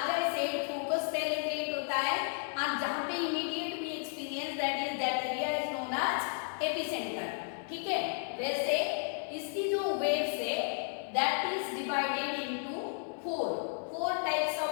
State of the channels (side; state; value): right; silent; 56 dB below the other